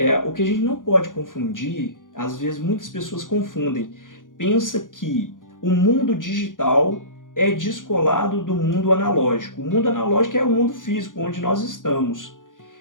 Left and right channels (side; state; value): right; late; 0.89 ms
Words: O que a gente não pode confundir, às vezes muitas pessoas confundem. Pensa que o mundo digital é descolado do mundo analógico. O mundo analógico é o mundo físico, onde nós estamos.